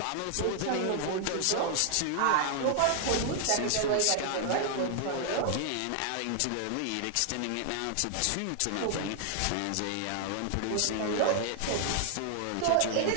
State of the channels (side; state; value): both; different; correlation 0.00